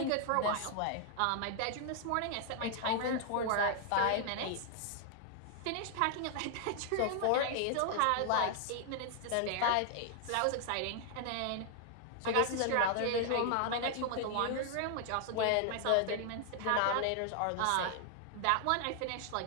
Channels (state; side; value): different; both; correlation 0.00